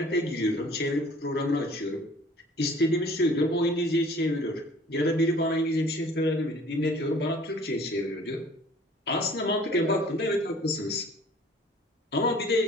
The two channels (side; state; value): both; normal; correlation 0.51